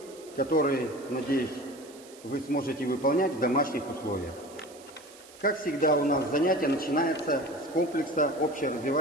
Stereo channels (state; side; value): noise; right; hiss, 21 dB below the sound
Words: которые, надеюсь, вы сможете выполнять в домашних условиях. Как всегда, у нас занятие начинается с комплекса